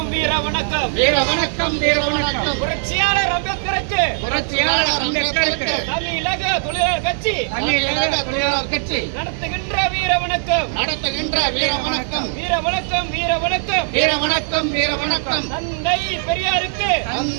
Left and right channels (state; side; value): silent; left; digital silence